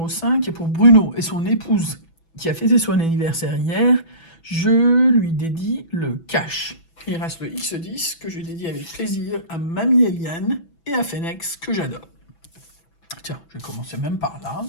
5, et pour Bruno et son épouse qui a fêté son anniversaire hier, je lui dédie le cash. Il reste le X10 que je dédie avec plaisir à Mamie Eliane et à Phoenix que j'adore. Tiens, je vais commencer même par là.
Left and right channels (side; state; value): right; late; 6.0 ms